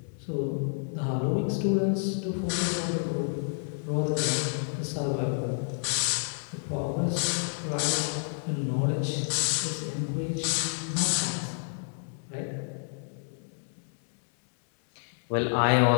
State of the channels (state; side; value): silent; right; 58 dB below the other